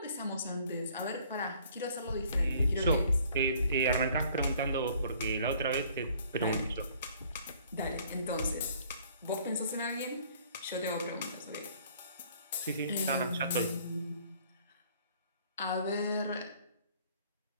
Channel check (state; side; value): inverted; both; correlation -0.58